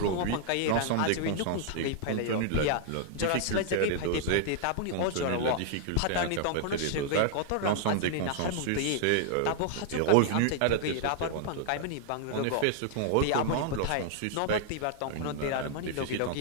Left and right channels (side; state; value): both; different; correlation 0.00